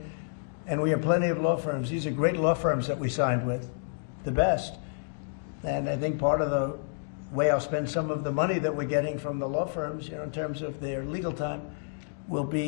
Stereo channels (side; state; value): right; silent; digital silence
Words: and we have plenty of law firms. These are great law firms that we signed with, the best. And I think part of the way I'll spend some of the money that we're getting from the law firms, in terms of their legal time, will